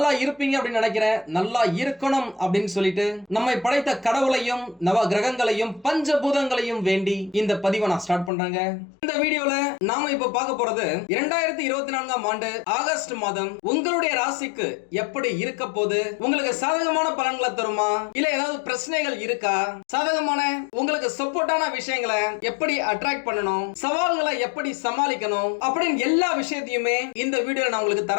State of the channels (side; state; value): right; drops out; at 8.3 s